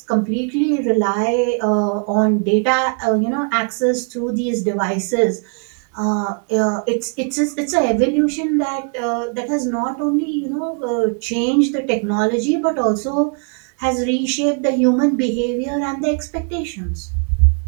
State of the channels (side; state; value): left; quieter; 39.2 dB